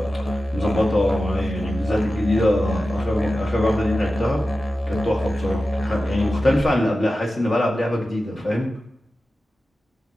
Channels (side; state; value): both; normal; correlation 0.94